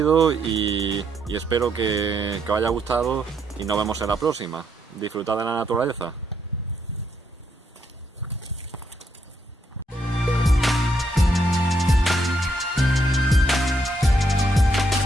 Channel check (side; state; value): both; normal; correlation 0.76